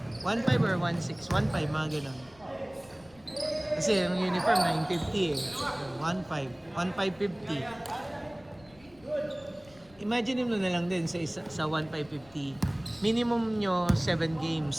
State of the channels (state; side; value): noise; left; rumble, 26 dB below the sound